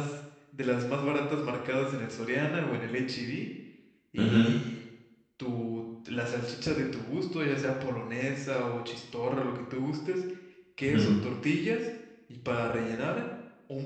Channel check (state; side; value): identical; both; correlation 1.00